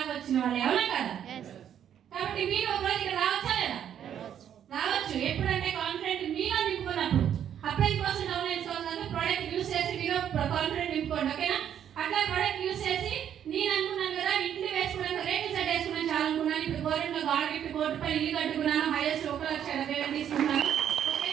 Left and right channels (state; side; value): quieter; left; 9.5 dB